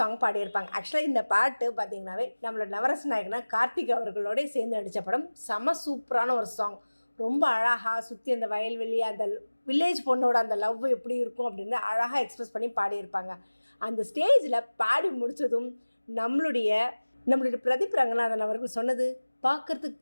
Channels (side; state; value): both; inverted; correlation -1.00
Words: பாடியிருப்பாங்க. ஆக்சுவலாக இந்த பாட்டு பார்த்திங்கனாவே நம்மளோட நவரச நாயகனா கார்த்திக் அவர்களோட சேர்ந்து நடித்த படம். செம சூப்பரான ஒரு சாங். ரொம்ப அழகாக சுற்றி அந்த வயல்வெளி, அந்த வில்லேஜ் பொண்ணோட அந்த லவ் எப்படி இருக்கும் அப்படின்னு அழகாக எக்ஸ்பிரஸ் பண்ணி பாடியிருப்பாங்க. அந்த ஸ்டேஜில் பாடி முடித்ததும் நம்மளுடைய பிரதீப் ரங்கநாதன் அவர்கள் சொன்னது,